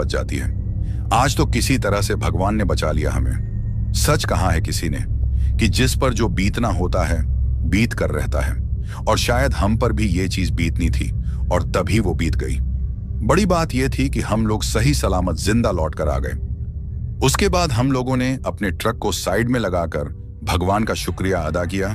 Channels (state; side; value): identical; both; correlation 1.00